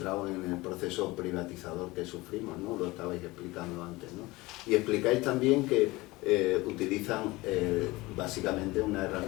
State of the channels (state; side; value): quieter; right; 21.1 dB